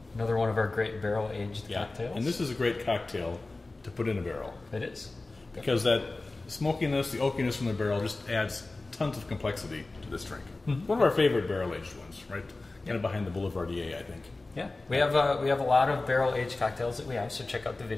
Another one of our great barrel-aged cocktails. And this is a great cocktail to put in a barrel. It is. Because that smokiness, the oakiness from the barrel just adds tons of complexity to this drink. Mm-hmm. One of our favorite barrel-aged ones, right? Kind of behind the Boulevardier, I think. Yeah, we have a lot of barrel-aged cocktails that we have, so check out the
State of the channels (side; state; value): right; quieter; 3.2 dB